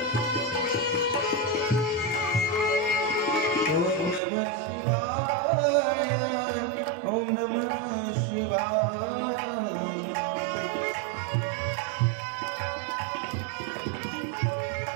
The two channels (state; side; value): drops out; left; at 4.2 s